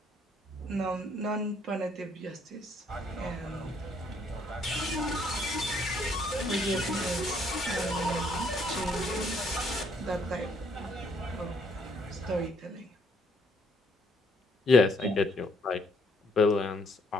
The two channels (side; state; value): both; normal; correlation 0.67